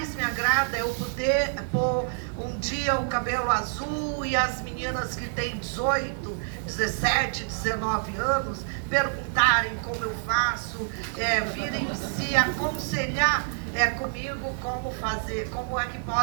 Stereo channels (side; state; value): left; silent; 60 dB below the other